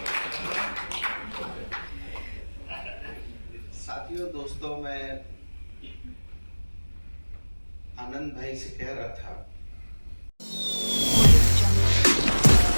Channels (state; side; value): inverted; both; correlation -1.00